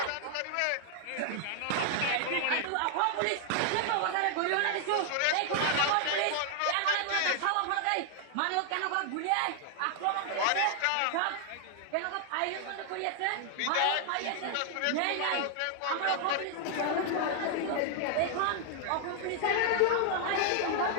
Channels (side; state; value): both; different; correlation 0.00